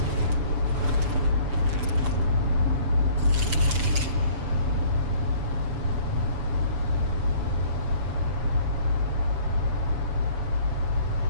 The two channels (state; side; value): late; left; 6.8 ms